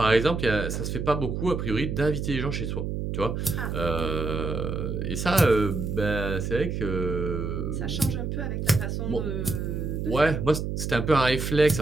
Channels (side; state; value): right; noise; hum, 3 dB below the sound